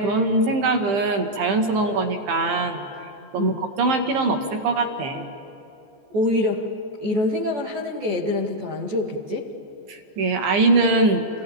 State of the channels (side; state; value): left; late; 14 ms